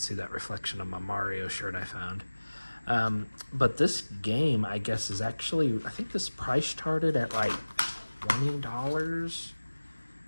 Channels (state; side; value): inverted; both; correlation -1.00